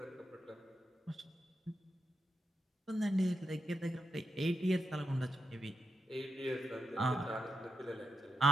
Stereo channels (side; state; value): both; normal; correlation 0.86